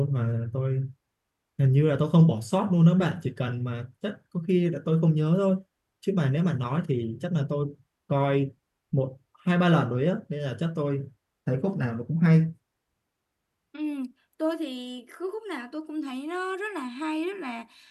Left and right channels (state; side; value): identical; both; correlation 1.00